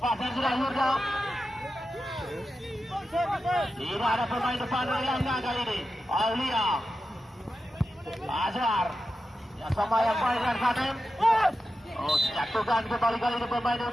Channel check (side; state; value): both; normal; correlation 0.91